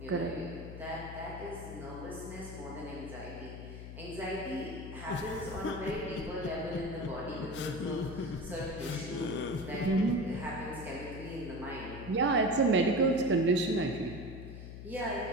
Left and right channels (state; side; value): noise; left; hum, 10 dB below the sound